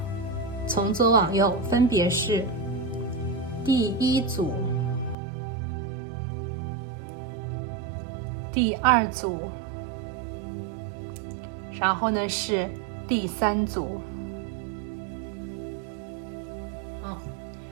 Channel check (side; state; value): left; drops out; at 5.2 s